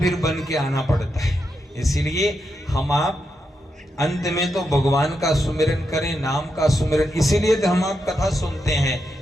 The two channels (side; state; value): both; normal; correlation 0.84